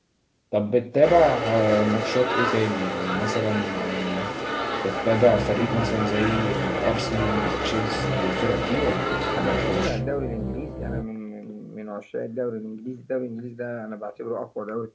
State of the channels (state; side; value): identical; both; correlation 1.00